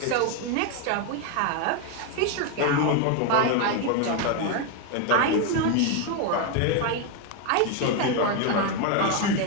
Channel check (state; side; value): different; both; correlation 0.01